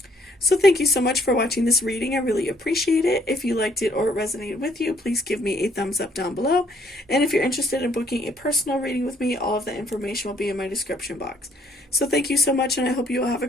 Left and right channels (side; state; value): both; normal; correlation 0.65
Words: So thank you so much for watching this reading. I really appreciate it. If you liked it or it resonated with you, please give me a thumbs up down below. And if you're interested in booking a personal reading with me, all of the information will be in my description box. So thank you so much, and I hope you all have a